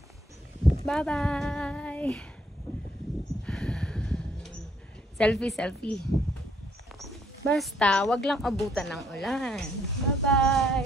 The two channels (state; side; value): normal; both; correlation 0.68